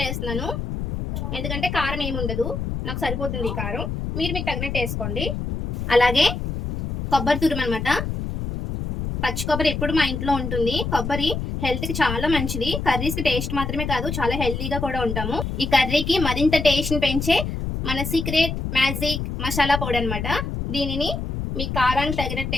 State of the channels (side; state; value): left; noise; rumble, 4 dB below the sound